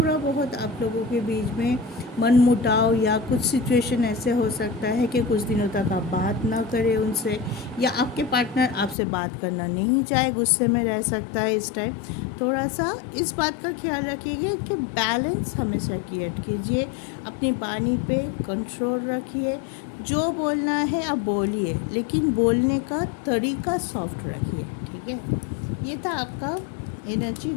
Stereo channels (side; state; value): right; drops out; at 9.0 s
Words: बहुत आप लोगों के बीच में मनमुटाव या कुछ सिचुएशन ऐसे हो सकता है कि कुछ दिनों तक आप बात ना करें उनसे, या आपके पार्टनर आपसे बात करना नहीं चाहे, गुस्से में रह सकता है। इस टाइम थोड़ा सा इस बात का ख्याल रखिएगा कि बैलेंस हमेशा क्रिएट कीजिए, अपनी वाणी पे कंट्रोल रखिए, जो बोलना है आप बोलिए, लेकिन बोलने का तरीका सॉफ्ट रखिए, ठीक है। ये था आपका एनर्जी